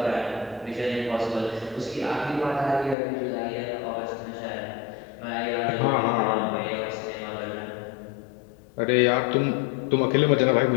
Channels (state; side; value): drops out; right; at 3.0 s